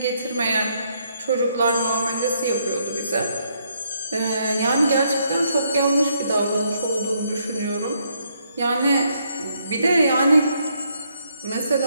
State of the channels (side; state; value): both; inverted; correlation -0.73